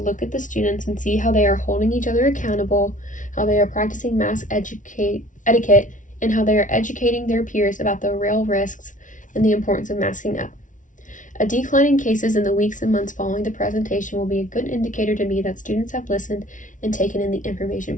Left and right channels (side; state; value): right; late; 0.37 ms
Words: at the students and see how they are holding each other accountable, how they are practicing mask etiquette, and how they are educating their peers about the real risks and the importance of masking up. A decline in cases in the weeks and months following the presentation will be a good indicator to me that students have listened and taken in the